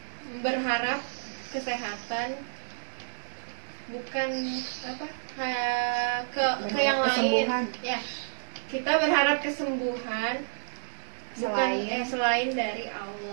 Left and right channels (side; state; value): left; silent; 58 dB below the other